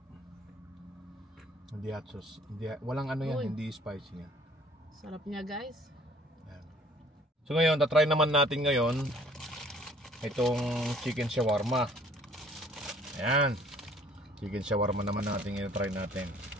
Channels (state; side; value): normal; both; correlation 0.56